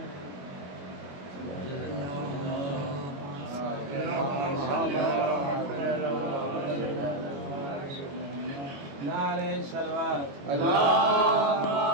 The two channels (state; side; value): late; left; 21 ms